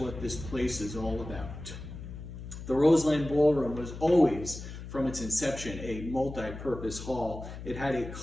this place is all about." The Roseland Ballroom was always, from its inception, a multi-purpose hall. It had a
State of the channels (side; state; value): left; noise; hum, 11 dB below the sound